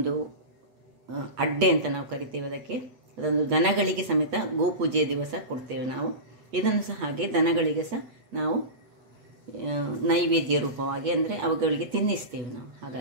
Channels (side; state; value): left; late; 8.3 ms